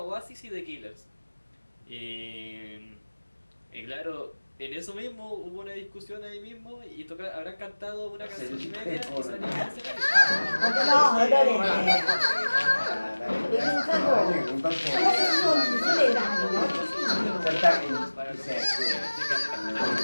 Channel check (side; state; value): both; inverted; correlation -1.00